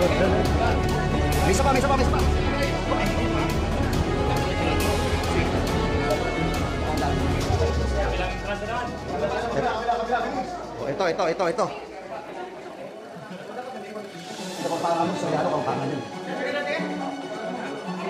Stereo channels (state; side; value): identical; both; correlation 1.00